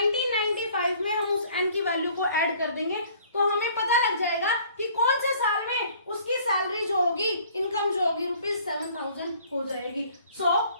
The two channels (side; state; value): both; inverted; correlation -0.55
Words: में हम उस N की वैल्यू को ऐड कर देंगे तो हमें पता लग जाएगा कि कौन से साल में उसकी सैलरी जो होगी, इनकम जो होगी रुपीज 7,000 हो जाएगी. So